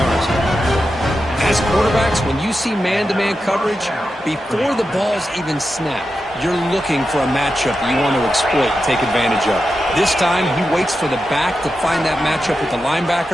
As quarterbacks, when you see man-to-man coverage, before the ball's even snapped, you're looking for a matchup that you want to exploit, take advantage of. This time, he waits for the back to find that matchup with the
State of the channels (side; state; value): both; normal; correlation 0.90